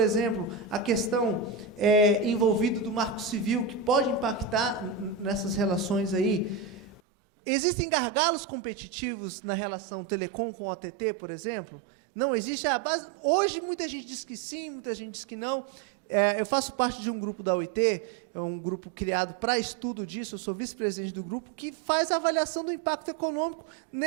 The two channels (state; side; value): drops out; left; at 7.0 s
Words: a questão envolvida do Marco Civil, que pode impactar nessas relações aí. Existem gargalos competitivos na relação telecom com OTT, por exemplo? Não existe? Hoje, muita gente diz que sim, muita gente diz que não. Eu faço parte de um grupo da OIT, é um grupo criado para estudo disso, eu sou vice-presidente do grupo, que faz a avaliação do impacto econômico